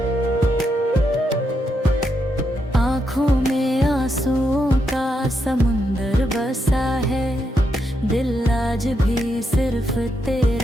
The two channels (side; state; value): both; normal; correlation 0.81